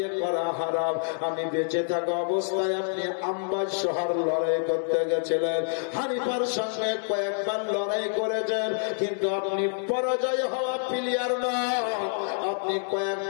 করা হারাম। আমি বেঁচে থাকা অবস্থায় আপনি আম্বাজ শহর লড়াই করতে গেছিলেন, হানিফার সঙ্গে কয়েকবার লড়াই করেছেন, কিন্তু আপনি পরাজয় হওয়া প্লেয়ার নয়, আপনি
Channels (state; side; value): silent; right; 60 dB below the other